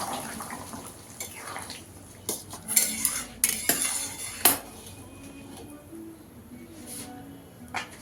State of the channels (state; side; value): identical; both; correlation 1.00